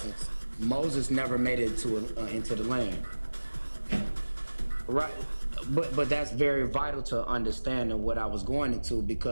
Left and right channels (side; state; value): both; inverted; correlation -1.00